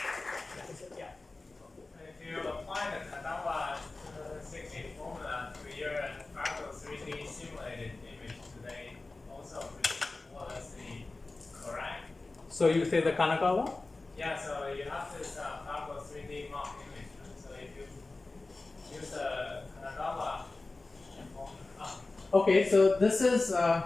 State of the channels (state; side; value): quieter; right; 3.3 dB